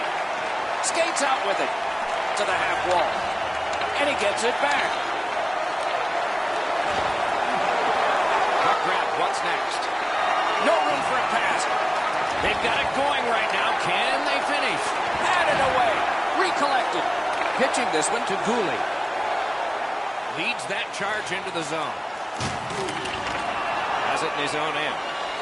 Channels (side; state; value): both; identical; correlation 1.00